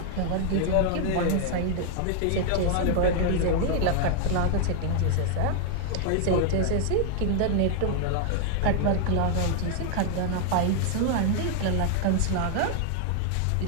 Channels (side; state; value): both; different; correlation 0.00